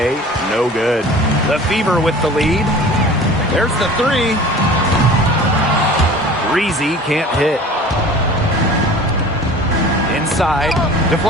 no good. The Fever with the lead. There's the three. Breezy can't hit. Inside,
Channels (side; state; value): both; normal; correlation 0.42